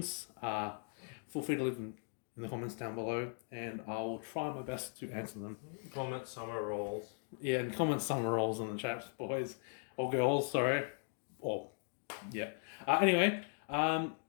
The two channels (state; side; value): silent; right; 52 dB below the other